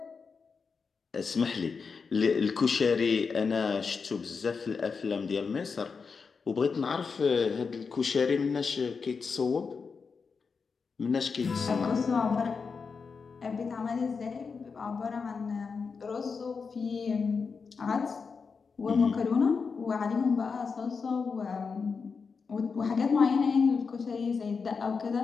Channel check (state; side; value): quieter; right; 5.2 dB